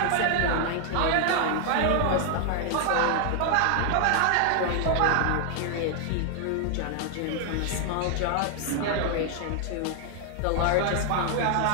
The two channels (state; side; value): different; both; correlation 0.00